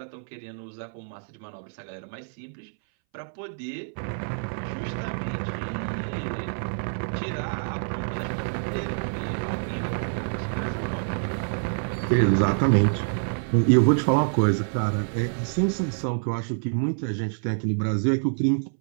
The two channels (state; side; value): silent; left; 60 dB below the other